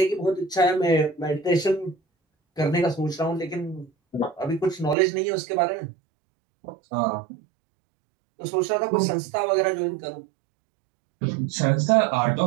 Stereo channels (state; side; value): drops out; left; at 5.0 s